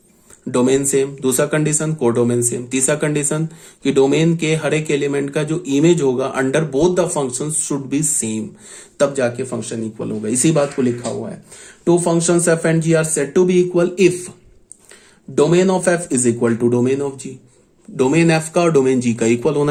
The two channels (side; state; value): both; identical; correlation 1.00